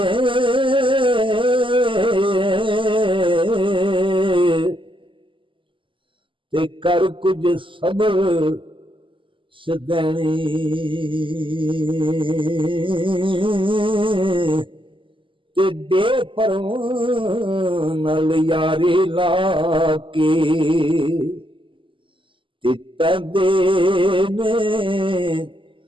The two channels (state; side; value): late; left; 0.25 ms